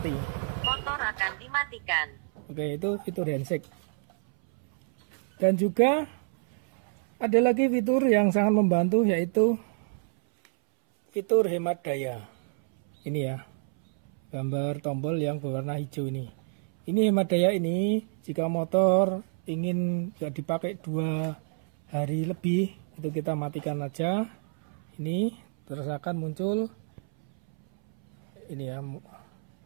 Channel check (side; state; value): left; silent; 59 dB below the other